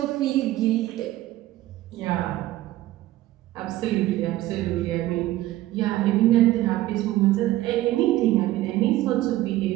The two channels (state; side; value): quieter; left; 15.7 dB